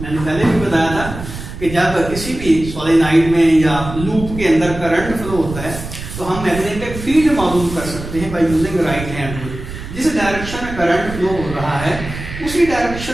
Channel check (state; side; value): noise; right; rumble, 10 dB below the sound